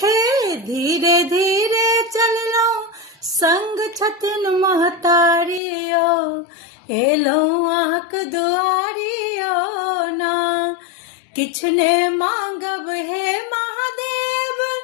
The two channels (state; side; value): drops out; right; at 5.6 s